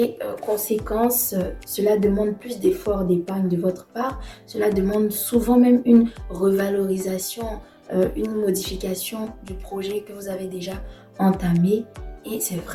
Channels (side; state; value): both; identical; correlation 1.00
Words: conséquence, cela demande plus d'efforts d'épargne de votre part. Cela demande souvent même une revalorisation, une modification du projet que vous avez déjà entamé. Et c'est